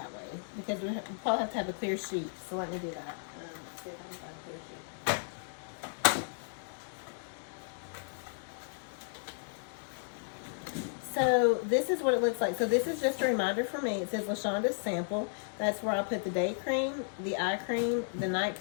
way because we probably have to have a clear sheet. So let me do that. Let's see if I can find a clear sheet. So this is what it looks like. So this is just a reminder for me. It says LaShonda's sample. That's where I put the day cream, the eye cream, the night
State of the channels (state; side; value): silent; right; digital silence